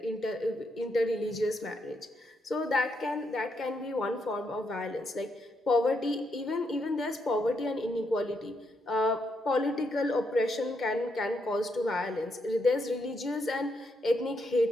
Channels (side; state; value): both; normal; correlation 0.79